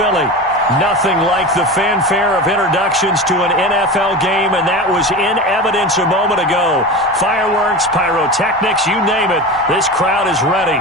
Nothing like the fanfare of introductions to an NFL game, and that was in evidence a moment ago. Fireworks, pyrotechnics, you name it. This crowd is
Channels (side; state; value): both; normal; correlation 0.28